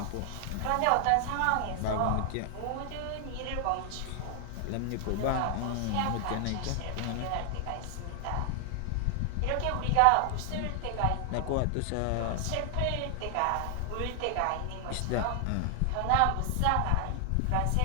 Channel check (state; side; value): different; both; correlation 0.00